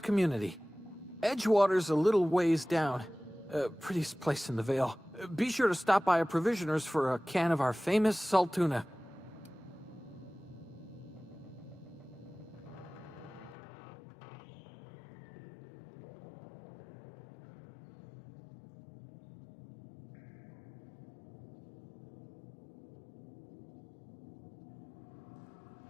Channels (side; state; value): right; drops out; at 13.6 s